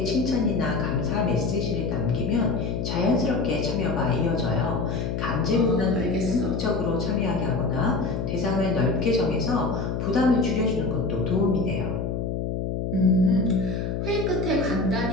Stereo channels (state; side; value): noise; left; hum, 2 dB below the sound